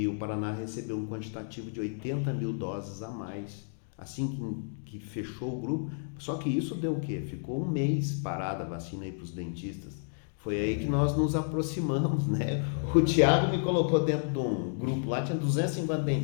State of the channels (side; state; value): right; silent; digital silence